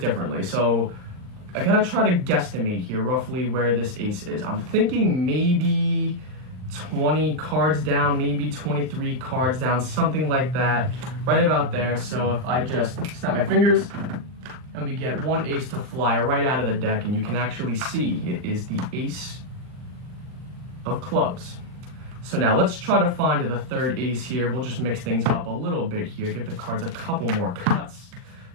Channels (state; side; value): late; left; 39 ms